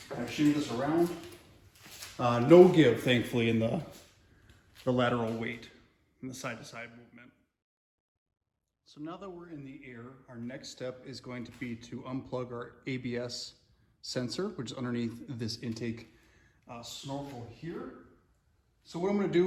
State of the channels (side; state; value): both; identical; correlation 1.00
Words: kind of shoot this around. No give, thankfully, in the lateral weight, in the side-to-side movement. So now that we're in the air, our next step is going to be to unplug our ABS sensor, which is underneath this intake snorkel here. So what I'm going to